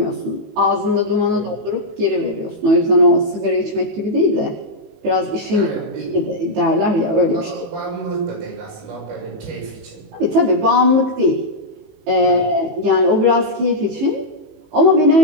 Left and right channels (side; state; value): left; late; 18 ms